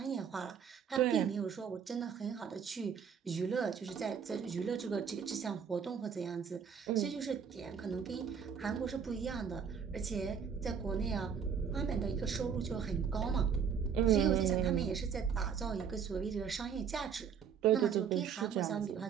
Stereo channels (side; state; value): left; quieter; 7.1 dB